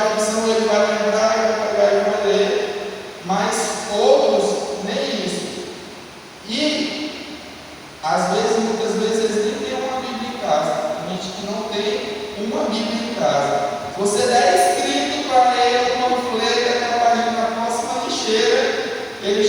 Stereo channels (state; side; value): identical; both; correlation 1.00